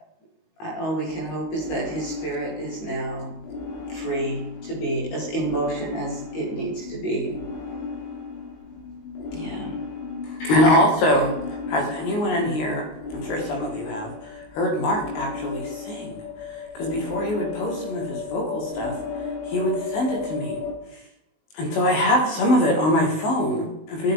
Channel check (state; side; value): late; right; 19 ms